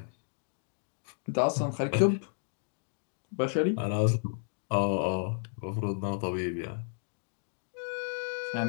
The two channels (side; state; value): right; silent; digital silence